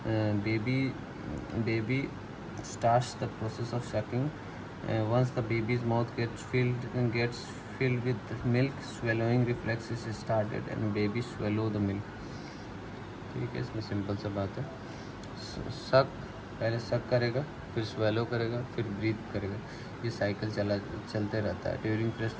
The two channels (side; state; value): both; identical; correlation 1.00